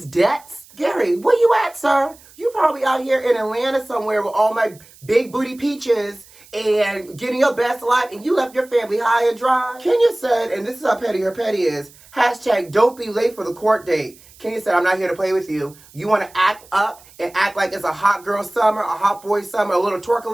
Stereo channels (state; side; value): noise; right; hiss, 25 dB below the sound